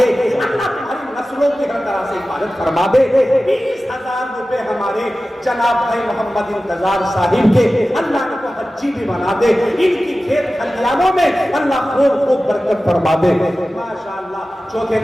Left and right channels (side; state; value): both; normal; correlation 0.95